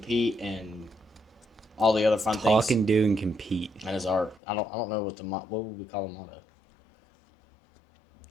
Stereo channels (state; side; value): drops out; right; at 4.4 s